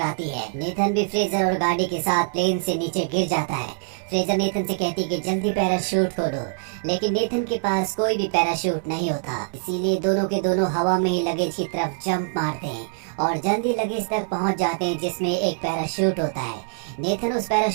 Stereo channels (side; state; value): left; silent; 59 dB below the other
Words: है। नेथन भी फ्रेजर और गाड़ी के साथ प्लेन से नीचे गिर जाता है। फ्रेजर नेथन से कहती है कि जल्दी पैराशूट खोलो, लेकिन नेथन के पास कोई भी पैराशूट नहीं होता, इसीलिए दोनों के दोनों हवा में ही लगेज की तरफ जंप मारते हैं और जल्दी लगेज तक पहुंच जाते हैं जिसमें एक पैराशूट होता है। नेथन उस